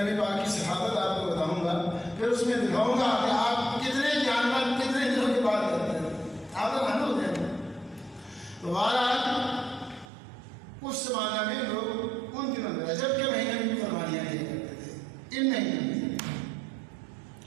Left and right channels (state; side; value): drops out; left; at 10.1 s